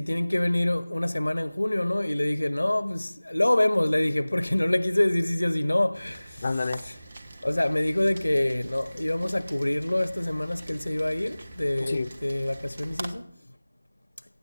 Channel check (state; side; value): inverted; both; correlation -0.99